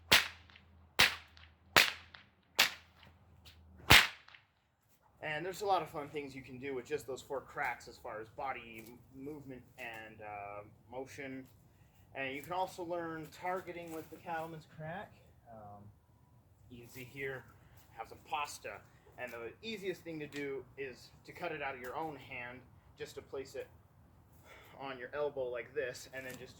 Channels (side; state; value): both; identical; correlation 1.00